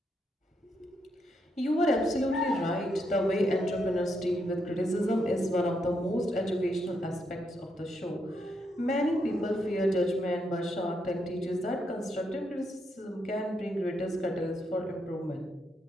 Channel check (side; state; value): both; normal; correlation 0.79